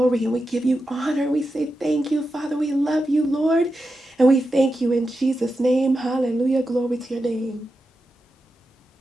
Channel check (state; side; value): normal; both; correlation 0.89